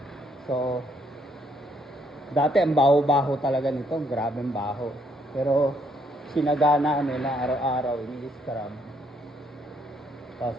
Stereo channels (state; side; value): normal; both; correlation 0.71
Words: So dati ang baho-baho talaga nito, grabeng baho. Pero sinagana nila araw-araw ini-scrub. Tapos